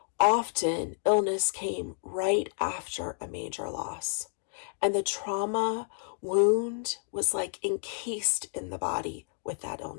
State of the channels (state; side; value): silent; right; digital silence